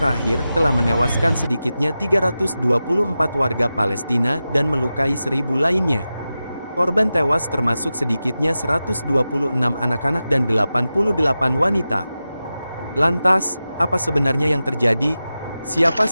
telah menewaskan sedikitnya 324 warga Palestina dan melukai 1.000 lainnya. Korban tewas termasuk sedikitnya 126 anak-anak dan 88 wanita. Lantas, apa sebenarnya yang terjadi? Siapa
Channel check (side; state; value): both; inverted; correlation -0.93